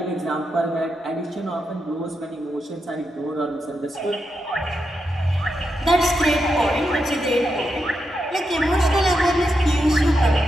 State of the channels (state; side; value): normal; both; correlation 0.85